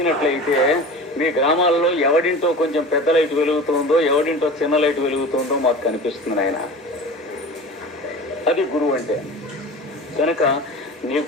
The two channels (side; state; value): both; normal; correlation 0.35